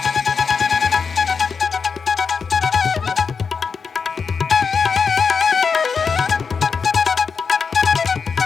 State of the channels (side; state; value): right; quieter; 5.6 dB